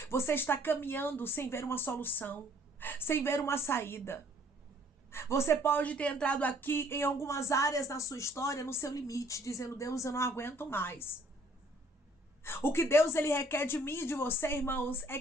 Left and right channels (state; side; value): normal; both; correlation 0.59